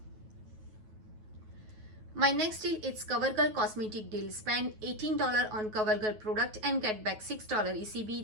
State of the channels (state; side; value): late; left; 9.3 ms